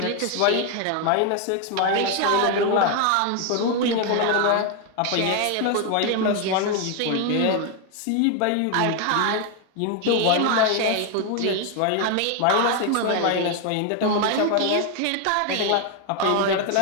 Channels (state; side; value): different; both; correlation 0.01